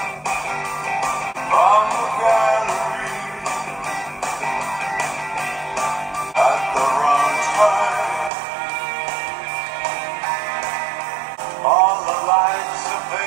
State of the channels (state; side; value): drops out; left; at 8.3 s